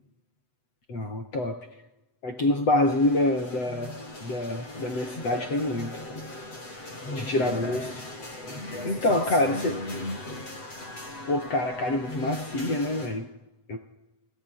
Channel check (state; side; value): late; right; 8.0 ms